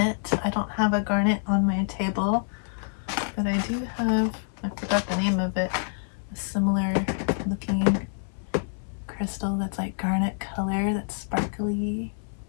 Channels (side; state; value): right; silent; 60 dB below the other